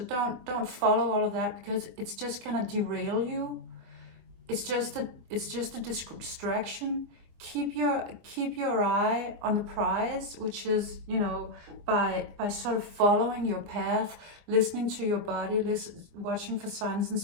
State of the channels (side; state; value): left; late; 24 ms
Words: follow all of that, because it's just gonna derail you. It's just a distraction. Keep your eye on the prize, which is, you know, by sort of following your path, listening to your body, watching for signs and